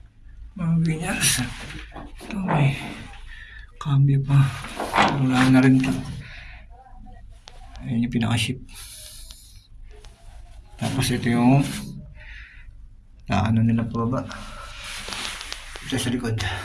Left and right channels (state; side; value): identical; both; correlation 1.00